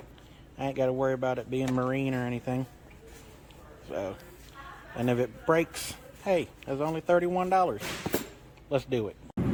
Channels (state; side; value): identical; both; correlation 1.00